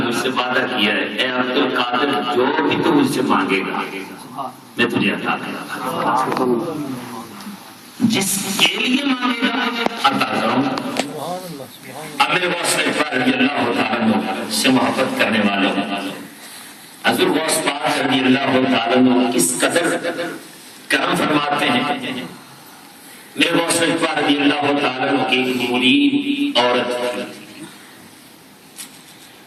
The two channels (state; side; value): identical; both; correlation 1.00